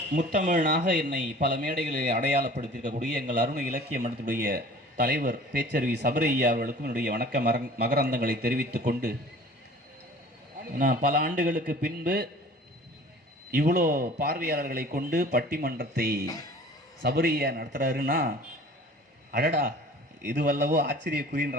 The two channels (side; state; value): both; normal; correlation 0.46